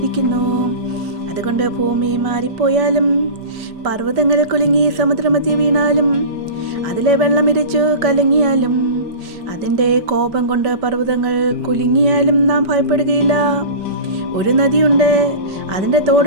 അതുകൊണ്ട് ഭൂമി മാറിപ്പോയാലും, പർവ്വതങ്ങൾ കുലുങ്ങി സമുദ്രമധ്യ വീണാലും, അതിലെ വെള്ളമിരച്ചു കലങ്ങിയാലും, അതിൻ്റെ കോപം കൊണ്ട് പർവ്വതങ്ങൾ കുലുങ്ങിയാലും നാം ഭയപ്പെടുകയില്ല. ഒരു നദിയുണ്ട്, അതിൻ്റെ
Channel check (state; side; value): late; left; 5.1 ms